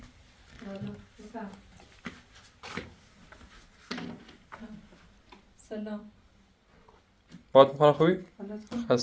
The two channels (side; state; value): both; identical; correlation 1.00